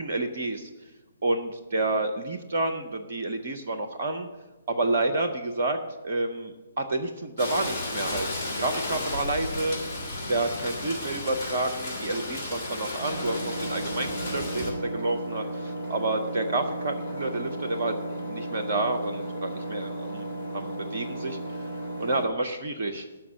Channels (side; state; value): both; inverted; correlation -0.69